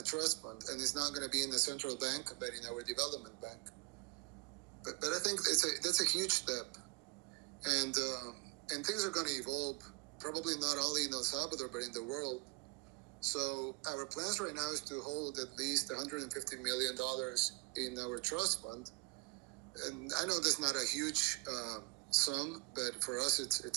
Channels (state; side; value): quieter; left; 26.6 dB